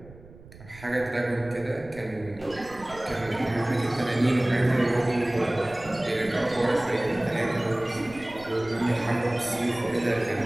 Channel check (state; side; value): noise; right; rumble, 20 dB below the sound